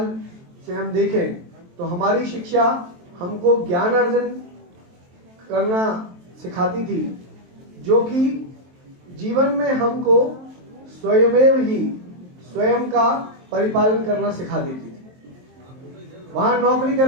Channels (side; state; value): left; late; 23 ms